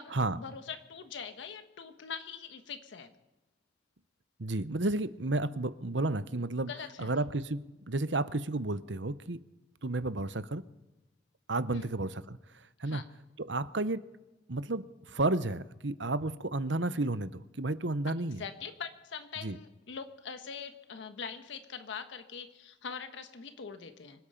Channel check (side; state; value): both; normal; correlation 0.30